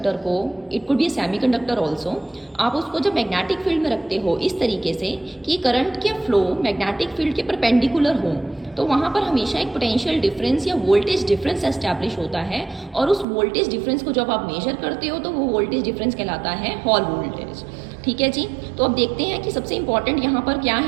को, it could be a semi conductor also, आप उसको जब मैग्नेटिक फील्ड में रखते हो इस तरीके से कि करंट के फ्लो मैग्नेटिक फील्ड के परपेंडिकुलर हो, तो वहाँ पर हमेशा एक पोटेंशियल डिफरेंस या वोल्टेज डिफरेंस एस्टैब्लिश होता है। और उस वोल्टेज डिफरेंस को जब आप मेजर करते हो तो वो वोल्टेज डिफरेंस कहलाता है हॉल वोल्टेज। ठीक है जी। तो अब देखते हैं कि सबसे इंपॉर्टेंट यहाँ पर क्या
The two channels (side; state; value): left; drops out; at 13.2 s